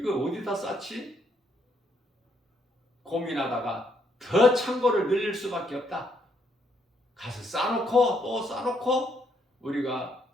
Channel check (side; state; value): both; normal; correlation 0.73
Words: 쌓지? 고민하다가 더 창고를 늘릴 수밖에 없다. 가서 쌓아놓고 또 쌓아놓고 우리가